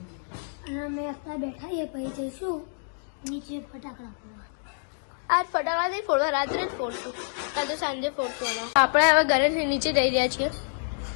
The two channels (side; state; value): right; silent; digital silence